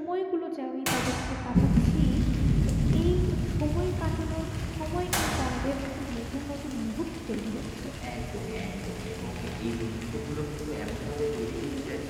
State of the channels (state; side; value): identical; both; correlation 1.00